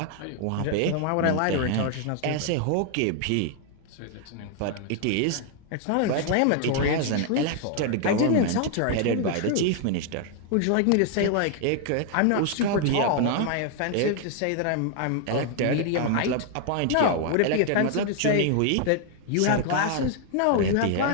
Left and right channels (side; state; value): both; different; correlation 0.00